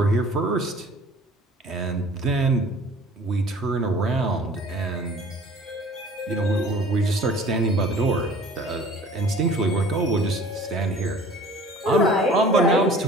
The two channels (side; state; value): both; normal; correlation 0.48